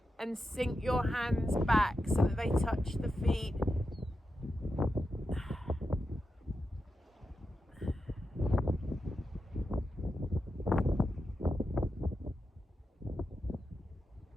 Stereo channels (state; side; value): normal; both; correlation 0.89